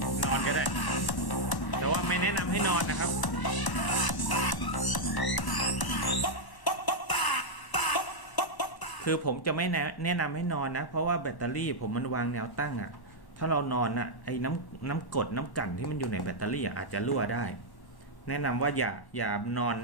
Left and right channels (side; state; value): right; late; 1.0 ms